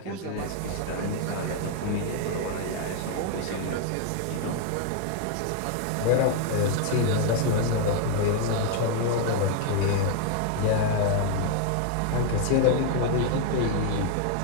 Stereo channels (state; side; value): different; both; correlation 0.00